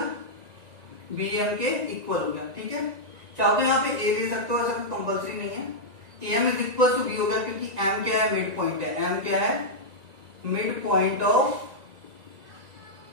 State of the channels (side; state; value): left; late; 1.9 ms